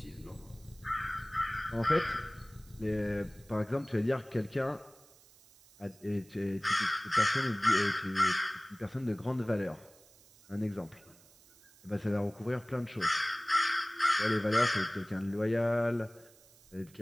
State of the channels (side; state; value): right; noise; hiss, 26 dB below the sound